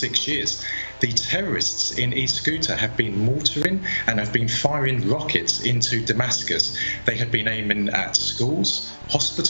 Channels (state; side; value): inverted; both; correlation -1.00